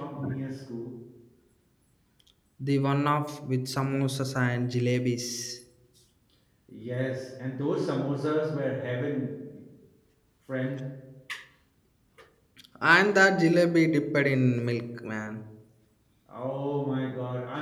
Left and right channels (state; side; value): identical; both; correlation 1.00